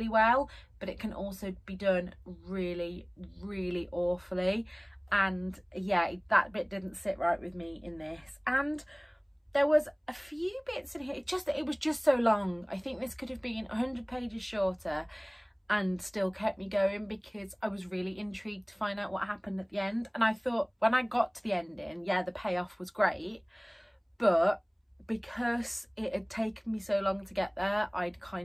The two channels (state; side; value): identical; both; correlation 1.00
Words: well, but it can also be done really, really awfully. And yeah, that bit didn't sit right with me in this. And there was a few bits in here, it was just so long. I think this could have been 100 pages shorter and still kept me going, because I was really intrigued to find out what happened at the end. And I thought when I got to the ending, yeah, the payoff was great, but because it had taken me so long to get there, I'd